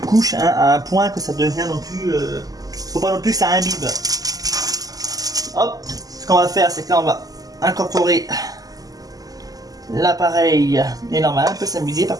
hein, à un point que ça devient non plus... faut pas non plus que ça imbibe. Hop, ce qu'on va faire, c'est que là on va incorporer l'appareil. Et normal, on peut s'amuser par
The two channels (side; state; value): left; late; 0.17 ms